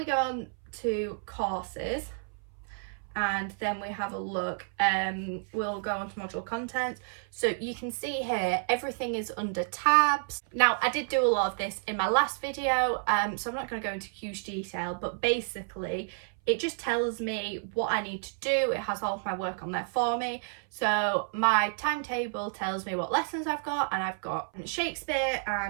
go on to courses, and then we have a look, we'll go on to module content. So you can see here everything is under tabs. Now I did do a lot of this in my last video, so I'm not going to go into huge detail, but basically it just tells me what I need to do. It has all of my work on there for me. So my timetable tells me what lessons I've got, and I've got Shakespeare,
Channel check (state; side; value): silent; left; 58 dB below the other